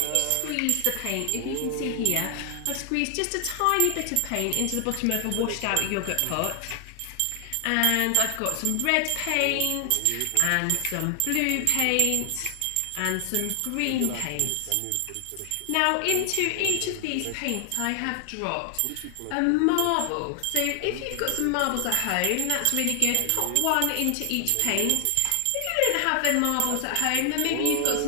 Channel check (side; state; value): both; different; correlation 0.00